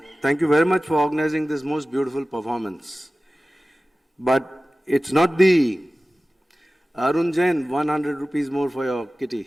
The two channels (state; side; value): normal; both; correlation 0.96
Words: Thank you very much for organizing this most beautiful performance. But it's not the Arun Jain, 100 rupees more for your